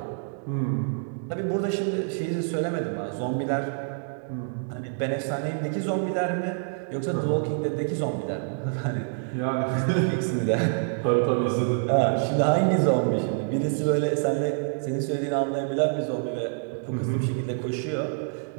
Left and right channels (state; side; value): silent; left; digital silence